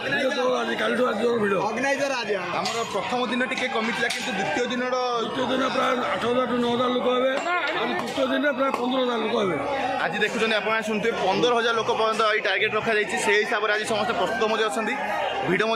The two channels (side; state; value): both; identical; correlation 1.00